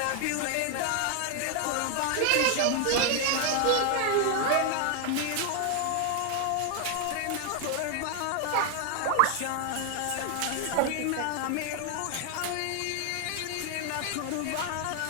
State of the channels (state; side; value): different; both; correlation 0.00